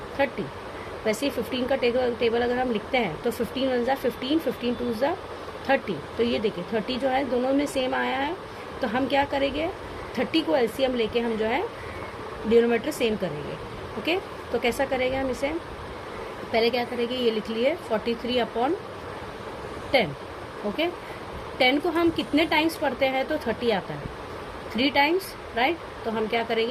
30. वैसे ही 15 का टेबल अगर हम लिखते हैं तो 15 1 जा 15, 15 2 जा 30. तो ये देखिए 30 जो है दोनों में सेम आया है, तो हम क्या करेंगे 30 को एलसीएम लेके हम जो है डिनोमिनेटर सेम करेंगे. ओके, तो कैसा करेंगे हम इसे? पहले क्या करेंगे, ये लिख लिए 43 अपॉन 10. ओके, 10 को हम कितने टाइम्स पढ़ते हैं तो 30 आता है 3 टाइम्स, राइट. तो हम क्या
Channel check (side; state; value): both; identical; correlation 1.00